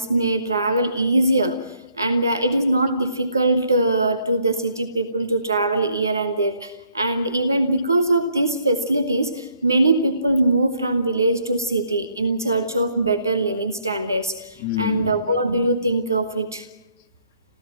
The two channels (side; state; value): both; inverted; correlation -0.68